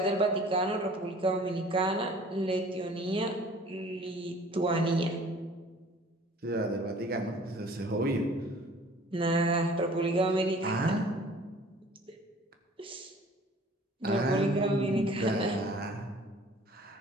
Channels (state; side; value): normal; both; correlation 0.50